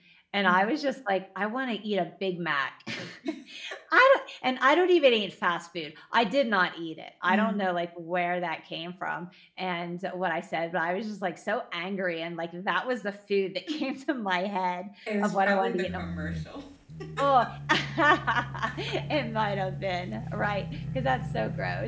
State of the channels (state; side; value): identical; both; correlation 1.00